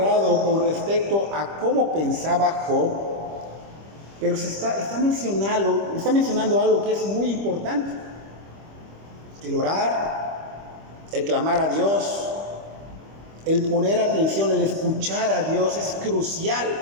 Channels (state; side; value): late; left; 25 ms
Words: con respecto a cómo pensaba Job, pero está mencionando algo que es muy importante: el orar, el clamar a Dios, el poner atención, el escuchar a Dios es crucial.